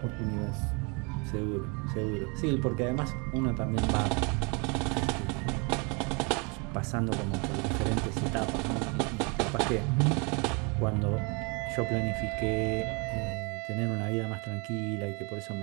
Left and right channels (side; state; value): left; quieter; 32.0 dB